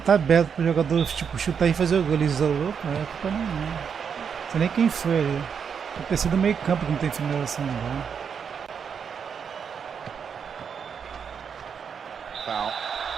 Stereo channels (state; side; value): quieter; left; 6.9 dB